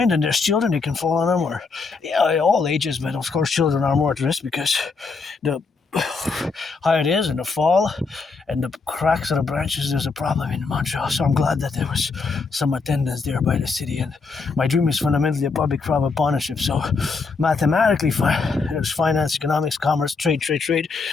and there's children, they can fall on them. Or, yeah, all ages, but of course children are more at risk because the higher it is and the fall and the cracks of the branches, there's a problem in Montreal. So I'm glad that there was some attendance there by the city. And my dream is fundamentally a public-private partnership. So mathematically, there's finance, economics, commerce, trade.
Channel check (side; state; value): right; quieter; 4.5 dB